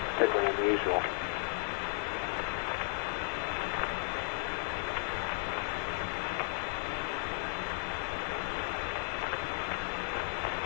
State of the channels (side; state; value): right; silent; 55 dB below the other